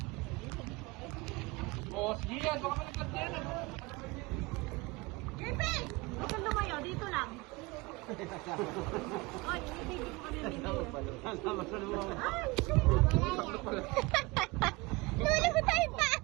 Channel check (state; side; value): quieter; left; 23.8 dB